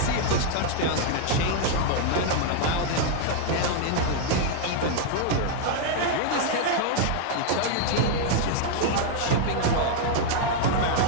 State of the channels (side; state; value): both; different; correlation 0.00